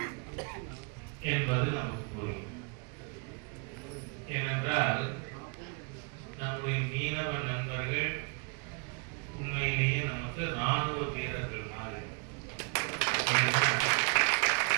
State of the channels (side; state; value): left; quieter; 34.8 dB